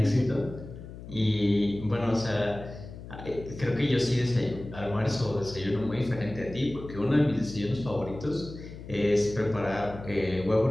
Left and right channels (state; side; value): noise; left; hum, 13 dB below the sound